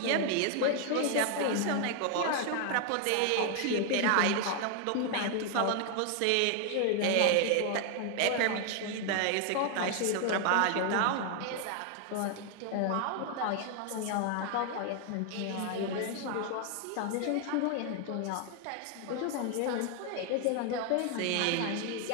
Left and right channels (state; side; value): different; both; correlation 0.00